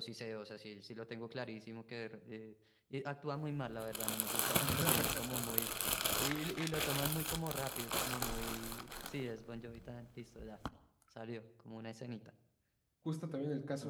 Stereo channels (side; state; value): both; identical; correlation 1.00